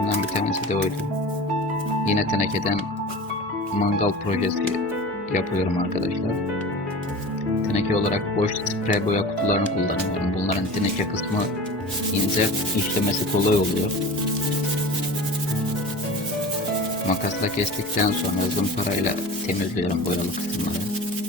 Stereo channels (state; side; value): normal; both; correlation 0.35